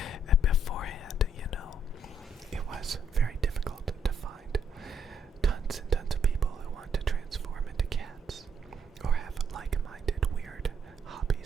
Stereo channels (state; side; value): normal; both; correlation 0.70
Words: And beforehand, it was very difficult to find tons and tons of people who want to transform into cats or have like-minded weird